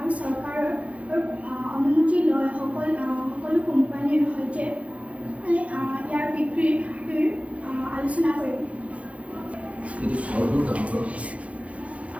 চৰকাৰৰ অনুমতি লৈ সকলো কোম্পানীৰ সৈতে ইয়াৰ বিক্ৰীৰ আলোচনা কৰিম।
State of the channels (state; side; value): late; left; 0.064 ms